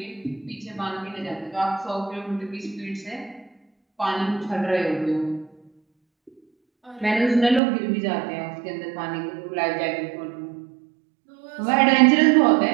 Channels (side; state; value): left; drops out; at 7.6 s